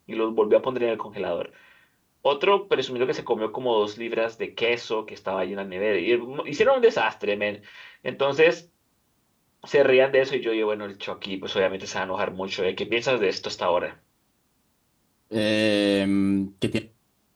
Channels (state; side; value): identical; both; correlation 1.00